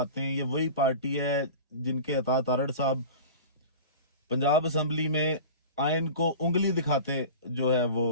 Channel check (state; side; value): inverted; both; correlation -0.35